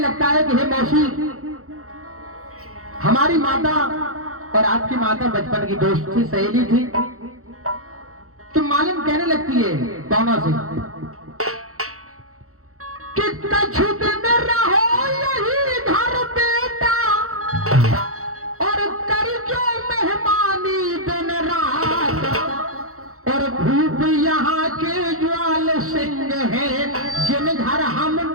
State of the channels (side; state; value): left; late; 0.64 ms